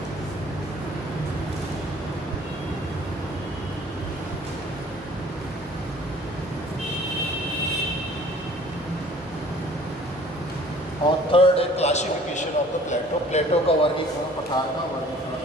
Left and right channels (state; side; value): normal; both; correlation 0.52